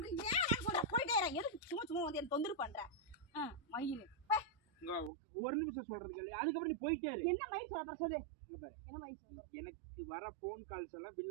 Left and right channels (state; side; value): drops out; left; at 5.1 s